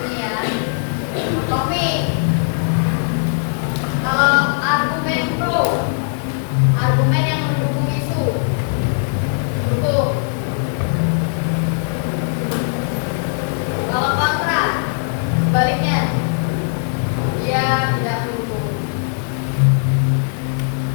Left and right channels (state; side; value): silent; right; digital silence